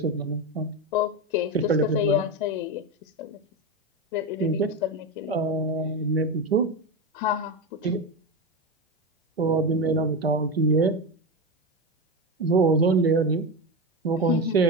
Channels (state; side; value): normal; both; correlation 0.16